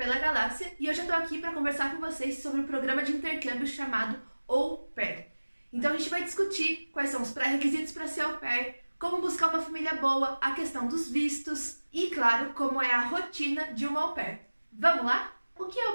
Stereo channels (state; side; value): inverted; both; correlation -1.00